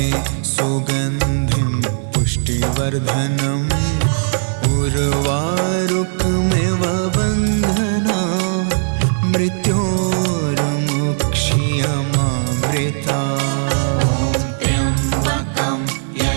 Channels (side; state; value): left; silent; digital silence